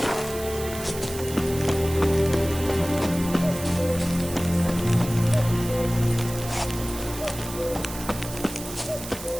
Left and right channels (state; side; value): noise; right; hiss, 11 dB below the sound